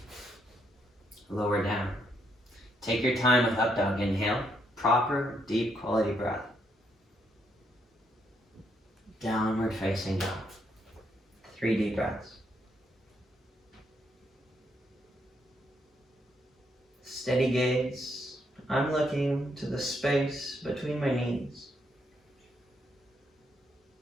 Lower down. Take your time with up dog. Inhale. Proper, deep, quality breath. Downward facing dog. 3 deep breaths. Steady gaze. I'm looking to the space between my knees.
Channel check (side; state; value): both; normal; correlation 0.75